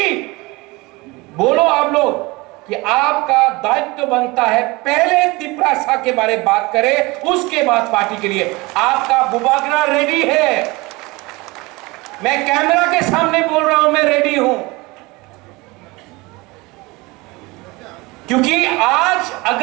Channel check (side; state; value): left; quieter; 23.5 dB